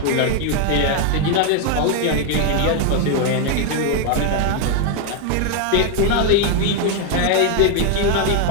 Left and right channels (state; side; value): different; both; correlation 0.00